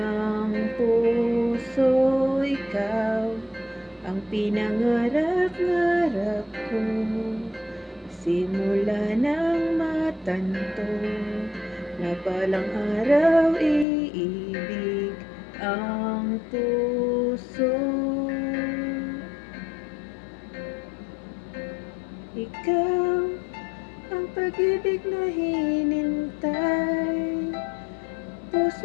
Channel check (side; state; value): right; drops out; at 13.9 s